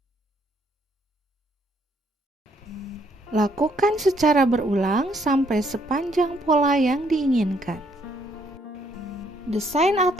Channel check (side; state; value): both; normal; correlation 0.69